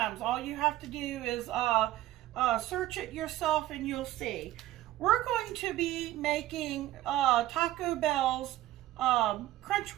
All you have to do is search it yourself and you'll see. We're going to be making Taco Bell's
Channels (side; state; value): left; quieter; 15.0 dB